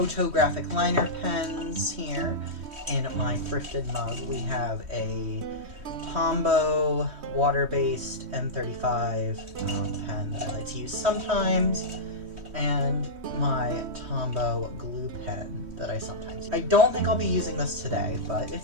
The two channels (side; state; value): left; late; 3.1 ms